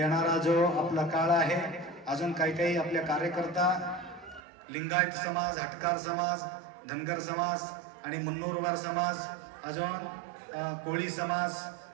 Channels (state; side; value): drops out; left; at 4.4 s